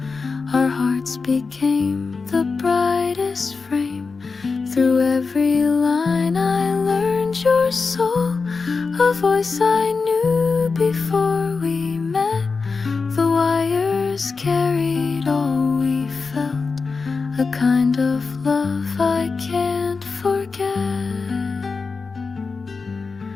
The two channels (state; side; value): quieter; right; 4.5 dB